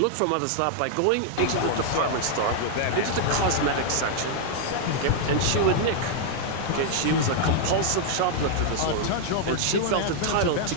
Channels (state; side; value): different; both; correlation 0.00